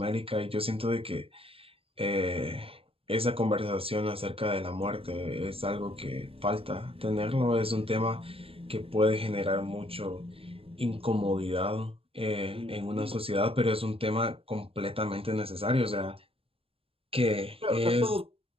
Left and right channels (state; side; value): late; left; 0.27 ms